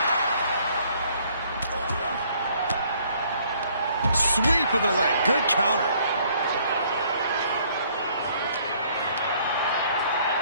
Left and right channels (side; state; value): both; inverted; correlation -0.62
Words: Sweep of the leg. Good counter.